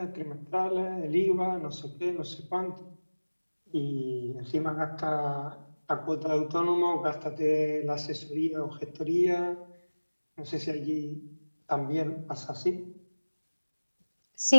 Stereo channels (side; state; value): both; inverted; correlation -1.00